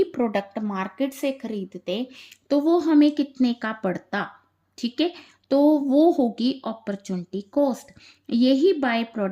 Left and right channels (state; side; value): identical; both; correlation 1.00